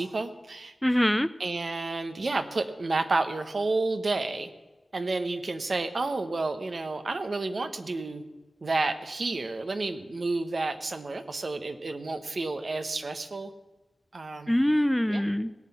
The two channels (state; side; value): normal; both; correlation 0.97